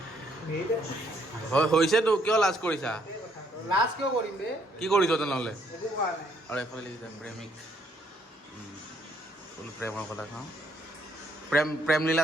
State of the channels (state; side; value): normal; both; correlation 0.69